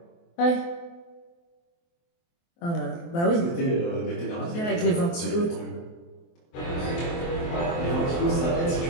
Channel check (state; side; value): late; right; 23 ms